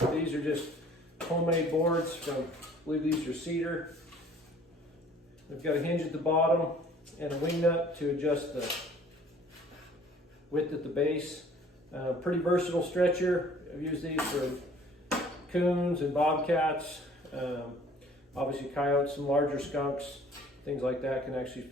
These are just homemade boards from, I believe these are cedar. They've got a hinge at the bottom and a wing nut to adjust the width at the base. Pretty versatile stretcher. I've used these for coons and bobcats, obviously coyotes, some larger skunks, things like that can actually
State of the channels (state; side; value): normal; both; correlation 0.53